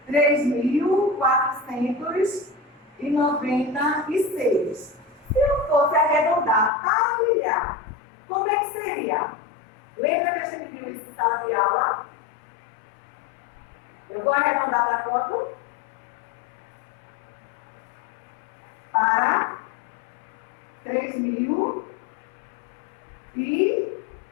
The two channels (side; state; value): right; drops out; at 6.7 s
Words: 3.496, se eu fosse arredondar para milhar, como é que seria? Lembra que a gente viu isso em sala de aula? Eu vou arredondar para quanto? Para